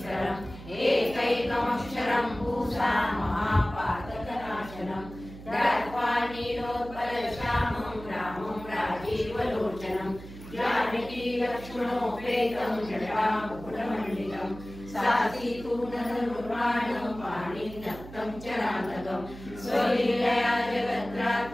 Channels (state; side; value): noise; right; hum, 15 dB below the sound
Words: एकैकमक्षरं पूषा महापातकनाशनं दत्त्वा नीलोत्पलश्यामं रामं राजीवलोचनं जानकी लक्ष्मणोपेतं जटामुकुटमण्डितं सासीतूणधनुर्बाणं पाणिनक्तं चरान्तकं स्वलीलया